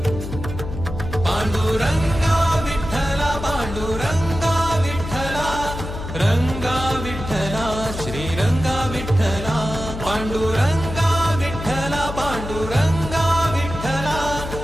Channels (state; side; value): noise; left; hum, 8 dB below the sound